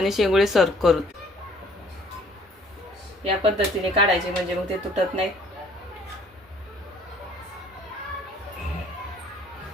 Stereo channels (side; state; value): both; normal; correlation 0.58